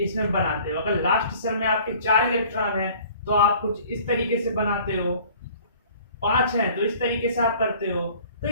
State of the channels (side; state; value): both; inverted; correlation -0.51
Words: इसमें बनाते हो। अगर लास्ट सेल में आपके 4 इलेक्ट्रॉन है तो आप कुछ इस तरीके से बनाते हो, 5 है तो इस तरीके से आप करते हो। तो